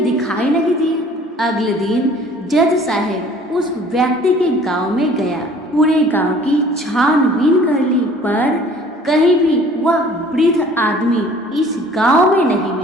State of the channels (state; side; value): normal; both; correlation 0.52